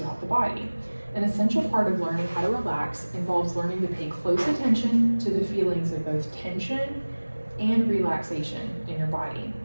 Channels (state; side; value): inverted; both; correlation -1.00